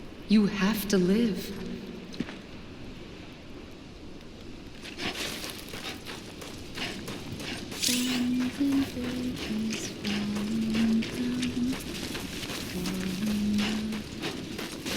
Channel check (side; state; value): both; identical; correlation 1.00